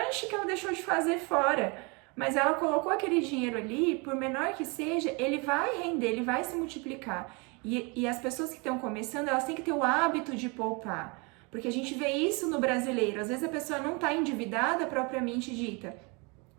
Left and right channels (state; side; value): quieter; left; 30.4 dB